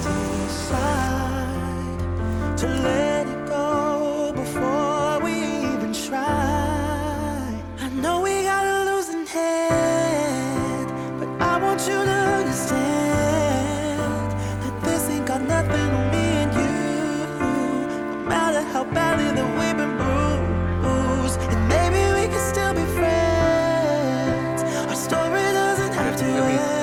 decide to let it go before we even try. I know we got a losing head, but I want you to understand that this ain't got nothing on me and you. No matter how badly that we've been bruised, and maybe we can still be friends. Our story doesn't have to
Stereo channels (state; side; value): identical; both; correlation 1.00